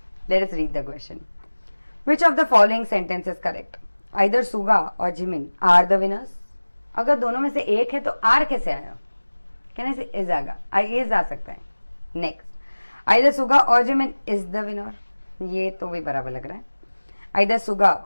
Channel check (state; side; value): inverted; both; correlation -1.00